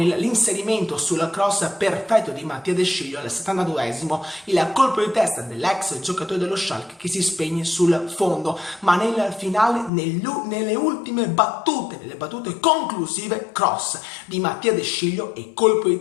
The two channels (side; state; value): right; drops out; at 9.9 s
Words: sul cross perfetto di Mattia De Sciglio al 72esimo, il colpo di testa dell'ex giocatore dello Schalke che si spegne sul fondo, ma nel finale, nelle ultime battute, nelle battute conclusive, cross di Mattia De Sciglio e colpo di